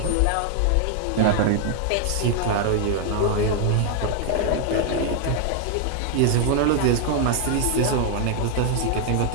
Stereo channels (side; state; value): both; different; correlation 0.00